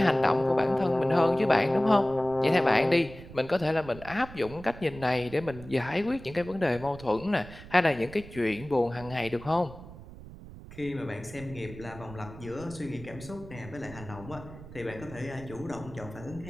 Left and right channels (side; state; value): right; noise; rumble, 16 dB below the sound